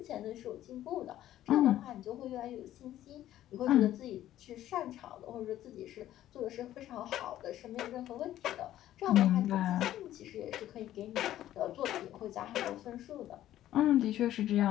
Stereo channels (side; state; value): right; quieter; 13.0 dB